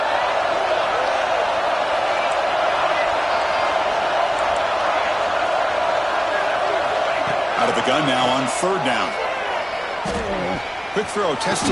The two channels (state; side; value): identical; both; correlation 1.00